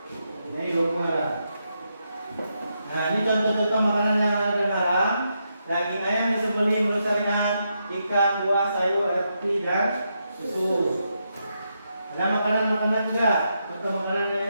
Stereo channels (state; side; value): inverted; both; correlation -0.82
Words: Ini logo halal. Nah, ini contoh-contoh makanan yang halal dan haram. Daging ayam disembelih menurut syariat, ikan, buah, sayur, roti, dan susu. Ada makanan-makanan juga, contoh makanan